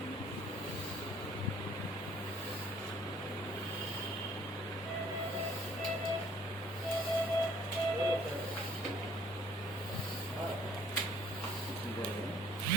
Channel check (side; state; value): both; normal; correlation 0.58